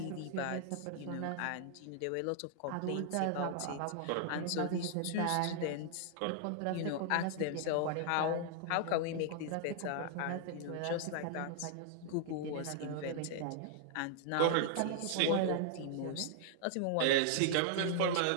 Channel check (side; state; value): both; different; correlation -0.01